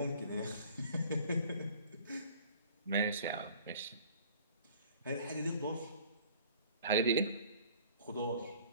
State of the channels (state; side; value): inverted; both; correlation -0.52